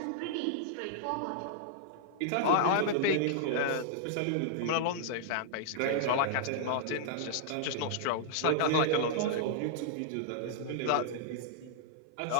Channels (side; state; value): both; different; correlation -0.01